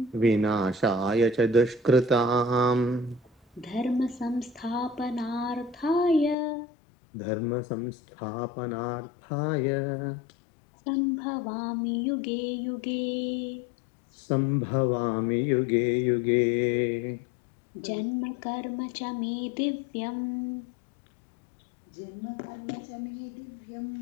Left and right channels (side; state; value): right; drops out; at 6.4 s